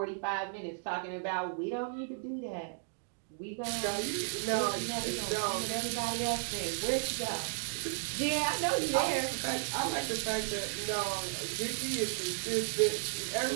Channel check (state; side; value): silent; left; digital silence